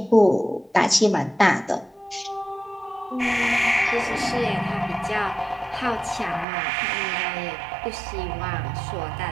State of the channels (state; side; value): drops out; left; at 6.5 s